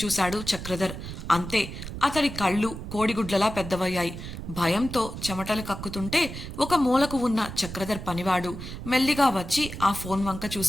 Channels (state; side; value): noise; right; rumble, 9 dB below the sound